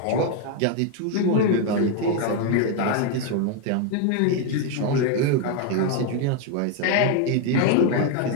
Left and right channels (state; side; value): different; both; correlation 0.01